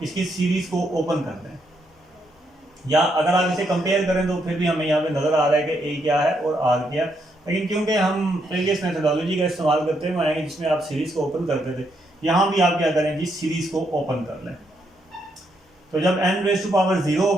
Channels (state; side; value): normal; both; correlation 0.77